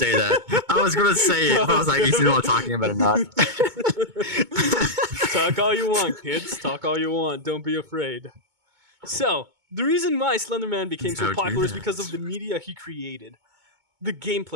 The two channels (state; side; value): late; left; 2.2 ms